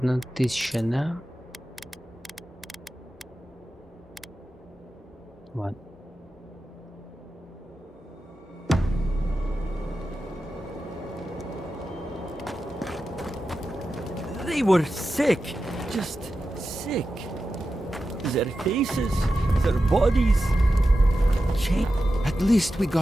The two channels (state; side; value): normal; both; correlation 0.92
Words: да? Ладно. They were sick. Just sick. Their faces, their bodies changed. At least we